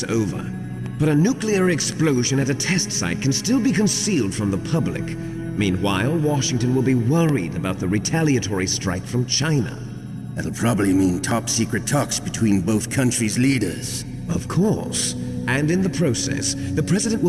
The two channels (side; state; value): both; identical; correlation 1.00